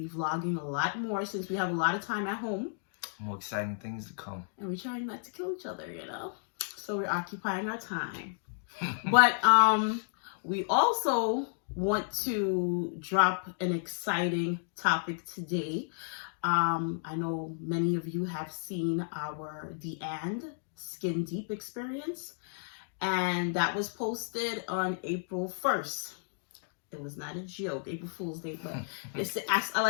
vlogging a lot more since we have a lot of time at home. More exciting things to come. And we're trying not to kill each other, So we're occupying our time. But we also want to drop an exciting topic today. I know many of you have seen our The And Skin Deep experience. And that was posted on April 1st. It was not a joke, April Fool's Day, but I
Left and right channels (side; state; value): right; silent; digital silence